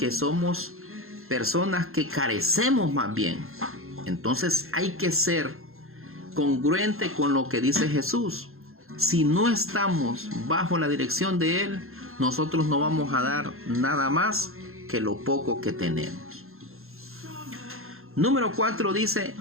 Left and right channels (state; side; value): late; left; 0.61 ms